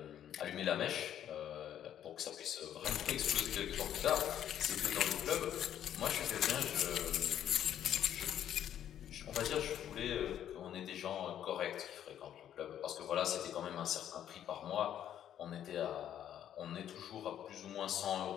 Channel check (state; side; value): quieter; right; 10.4 dB